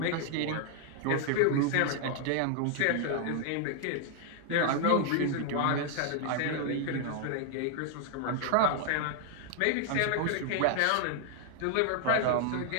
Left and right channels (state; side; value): different; both; correlation 0.00